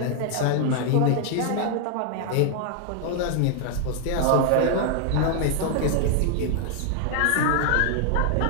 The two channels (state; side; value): different; both; correlation 0.00